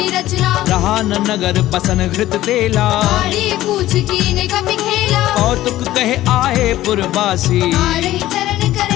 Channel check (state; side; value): quieter; right; 14.9 dB